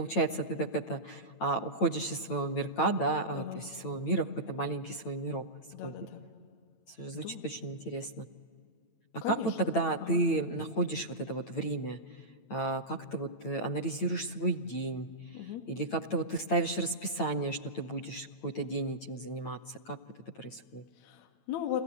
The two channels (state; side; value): late; right; 8.9 ms